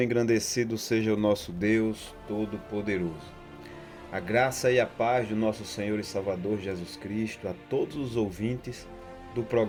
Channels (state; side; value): identical; both; correlation 1.00